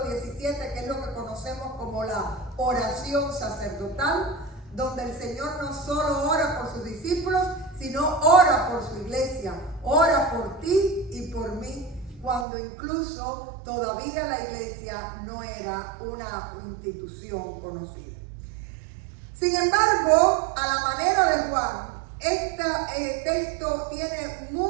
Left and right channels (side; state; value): left; drops out; at 12.5 s